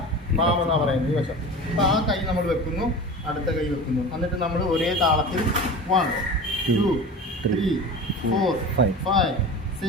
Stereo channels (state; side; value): normal; both; correlation 0.33